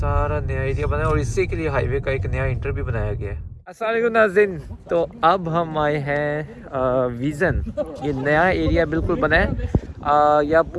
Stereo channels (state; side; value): identical; both; correlation 1.00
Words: नया एरिया बना है और इसी के लिए हाईवे का एक नया इंटर भी बनाया गया है। अस्सलाम वालेकुम नाज़रीन, तो अब हम आए हैं विज़न। ये नया एरिया बिल्कुल बना है। या